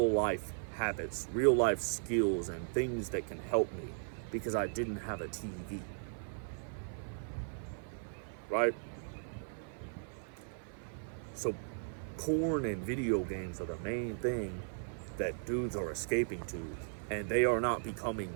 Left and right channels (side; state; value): left; silent; 53 dB below the other